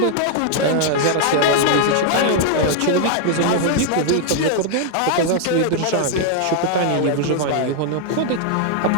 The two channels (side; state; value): both; different; correlation 0.00